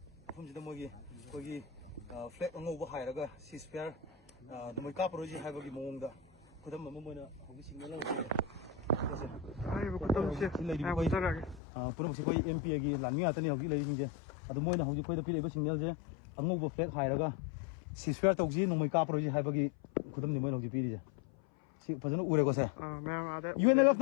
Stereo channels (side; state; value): right; drops out; at 11.6 s